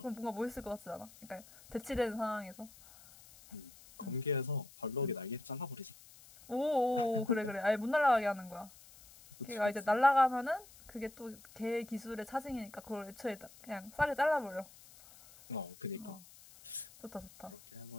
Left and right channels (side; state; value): left; noise; hiss, 21 dB below the sound